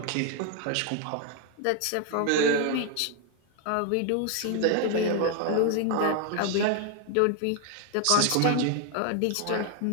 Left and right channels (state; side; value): different; both; correlation 0.01